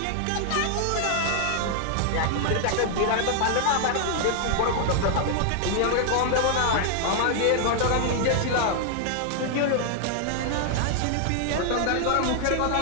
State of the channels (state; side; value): different; both; correlation 0.00